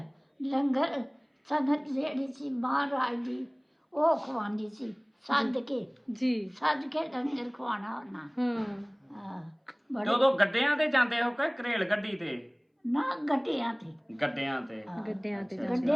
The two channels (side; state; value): both; identical; correlation 1.00